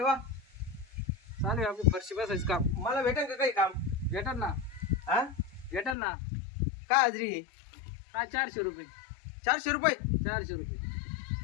चालू आहे आपली फरशी बसायची काम. मला भेटेल का काही काम? भेटल ना. हा भेटल ना. काय हाजरी आहे? काय 400 रुपये. 400 रुपये. 400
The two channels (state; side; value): drops out; right; at 6.0 s